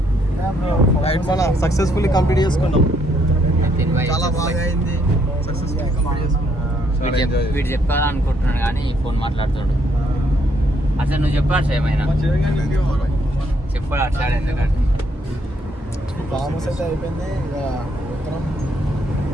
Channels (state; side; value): normal; both; correlation 0.71